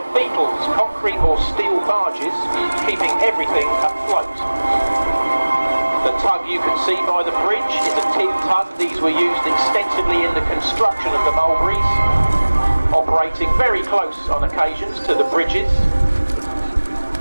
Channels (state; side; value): inverted; both; correlation -1.00